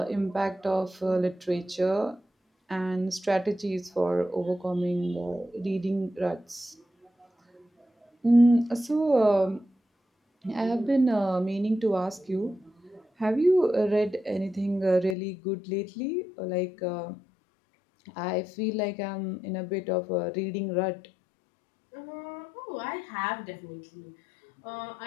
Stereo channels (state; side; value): drops out; right; at 15.2 s